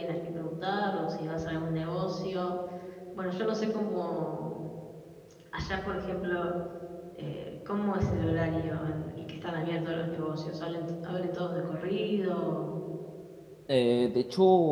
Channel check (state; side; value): identical; both; correlation 1.00